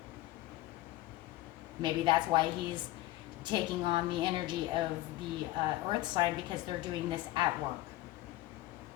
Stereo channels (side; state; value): right; quieter; 17.0 dB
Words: Maybe that's why he's taking on the energy of the earth sign, because they're doing this at work.